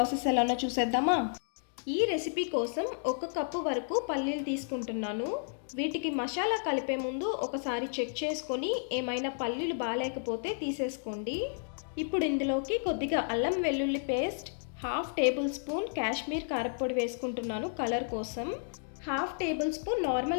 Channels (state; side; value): silent; right; digital silence